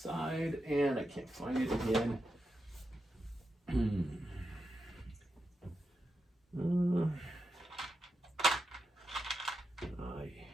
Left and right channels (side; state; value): both; normal; correlation 0.87